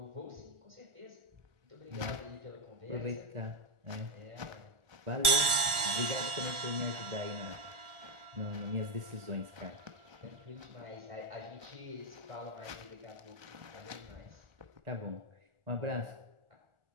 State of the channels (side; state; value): left; late; 1.4 ms